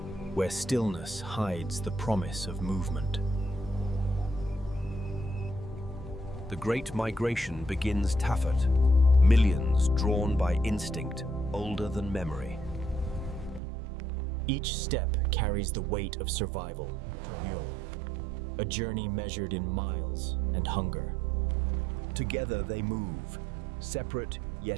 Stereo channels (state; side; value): drops out; left; at 13.6 s